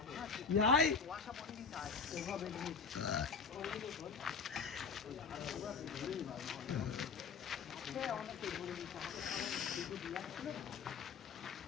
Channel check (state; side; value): quieter; right; 5.5 dB